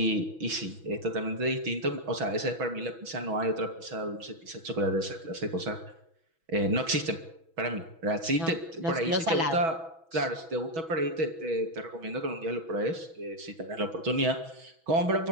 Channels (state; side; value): late; left; 6.1 ms